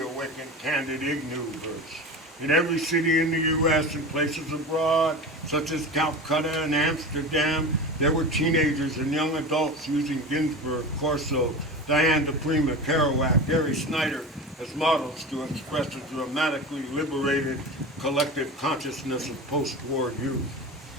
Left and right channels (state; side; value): normal; both; correlation 0.29